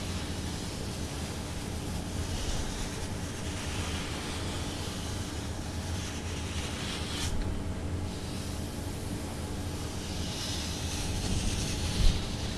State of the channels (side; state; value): both; identical; correlation 1.00